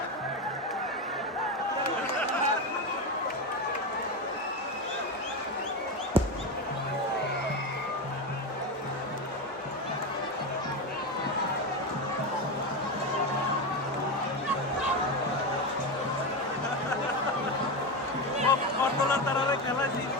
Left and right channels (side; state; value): both; normal; correlation 0.16